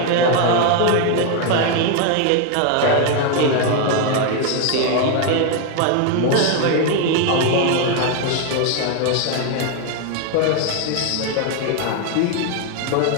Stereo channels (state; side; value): different; both; correlation 0.01